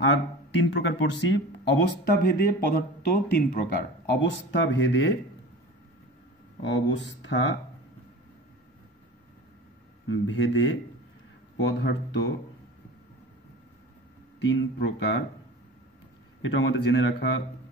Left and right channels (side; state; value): both; normal; correlation 0.36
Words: আর 3 প্রকার পড়ছি। অবস্থা ভেদে পদার্থ 3 প্রকার, অবস্থা ভেদে পদার্থ 3 প্রকার, এটা আমাদের জেনে রাখা